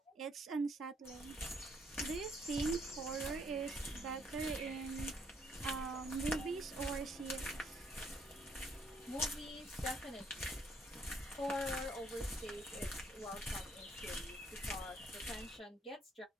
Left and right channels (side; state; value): both; normal; correlation 0.68